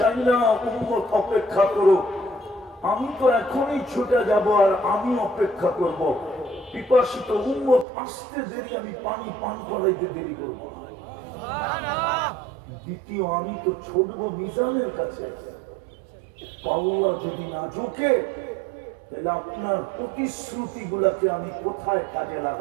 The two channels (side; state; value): left; drops out; at 7.9 s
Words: না উম্মত অপেক্ষা করুক। আমি তো এখনই ছুটে যাব আর আমি অপেক্ষা করব। পিপাসিত উম্মত আসতে দেরি, আমি পানি পান করাইতে দেরি করবো। দ্বিতীয়, আমি তো ছুটবো মিজানের কাছে। পাল্লা যদি না ঝুঁকে তাহলে আপনার প্রতিশ্রুতি গুলাকে আমি কোথায় কাজে